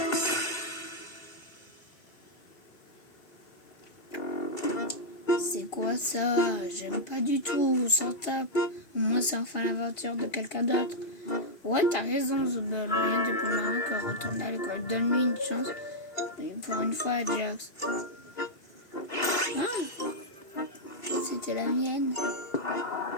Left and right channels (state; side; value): late; right; 2.8 ms